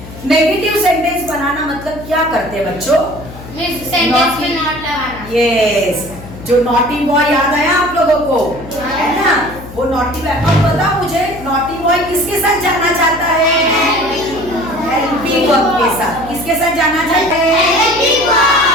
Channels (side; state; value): left; noise; hum, 15 dB below the sound